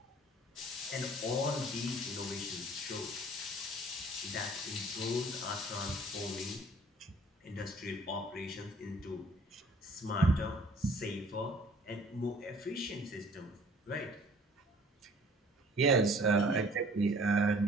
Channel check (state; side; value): normal; both; correlation 0.53